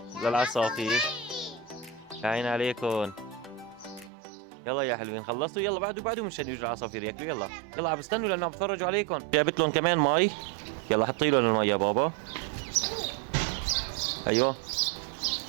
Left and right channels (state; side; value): drops out; left; at 4.1 s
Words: للعصافير. يا عين عليكم. يلا يا حلوين خلصتوا؟ يلا بعده مشان يجوا العصافير ياكلوا. يلا يلا عم بستنوا لأنه عم بتفرجوا عليكم. جابت لهم كمان مي. يلا حطي لهم المي يا بابا. أيوه